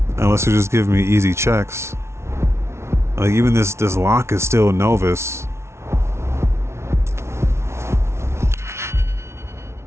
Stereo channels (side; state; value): left; late; 0.13 ms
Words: Unless you just give me easy checks. Like even this lock is still novice.